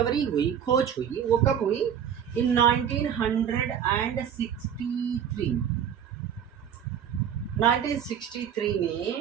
हुई, खोज हुई, वो कब हुई? इन 1963। 1963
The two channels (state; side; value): quieter; left; 8.6 dB